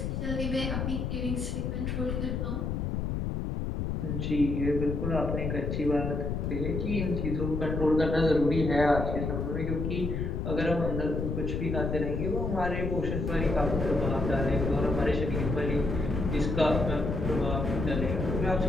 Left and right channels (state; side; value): noise; left; rumble, 2 dB below the sound